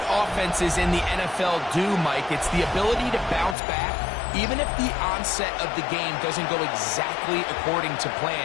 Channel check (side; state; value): right; drops out; at 3.6 s